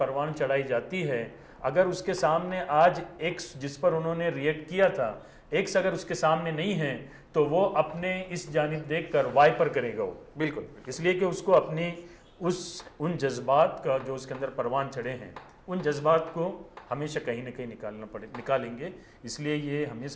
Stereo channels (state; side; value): identical; both; correlation 1.00